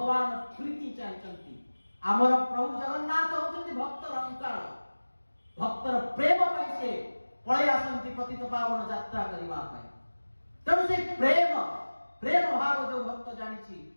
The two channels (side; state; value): both; inverted; correlation -1.00